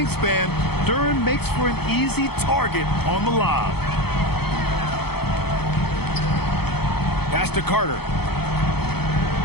Duren makes for an easy target on the lob. Pass to Carter.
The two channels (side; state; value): right; late; 0.96 ms